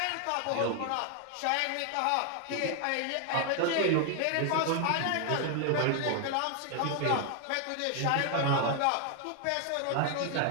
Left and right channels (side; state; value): both; different; correlation 0.00